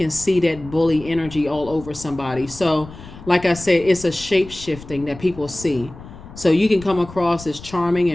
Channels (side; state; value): left; noise; rumble, 16 dB below the sound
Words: see that bully energy all over somebody. So, like I said, it's a shape shifting that people see. So you can come across as charming